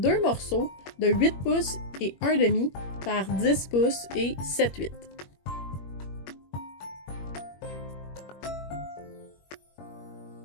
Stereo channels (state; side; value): late; right; 21 ms